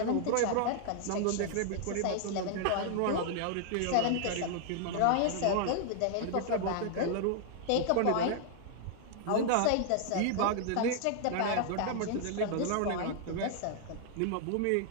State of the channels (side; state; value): both; different; correlation -0.01